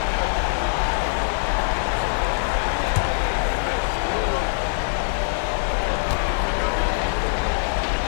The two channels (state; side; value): silent; right; 63 dB below the other